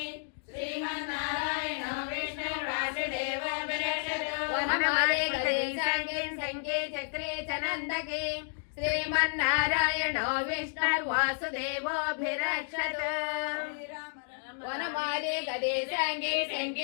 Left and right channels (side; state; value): right; silent; digital silence